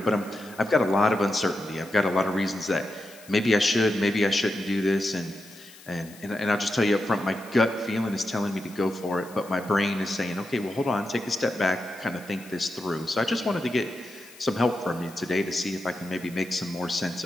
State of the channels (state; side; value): noise; left; hiss, 21 dB below the sound